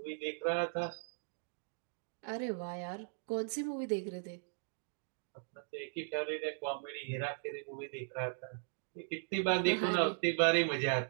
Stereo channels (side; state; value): left; silent; digital silence